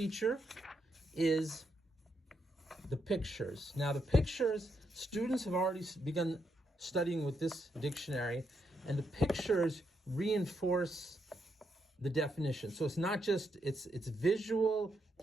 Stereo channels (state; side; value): normal; both; correlation 0.80